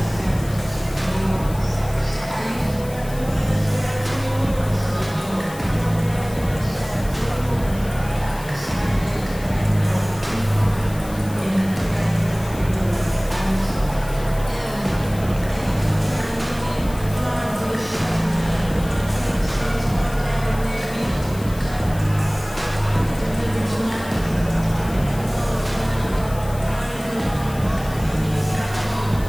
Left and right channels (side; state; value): left; noise; hiss, 17 dB below the sound